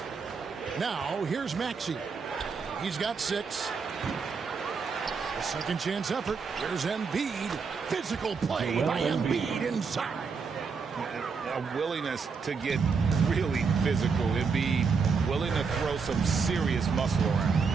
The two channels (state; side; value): quieter; left; 5.3 dB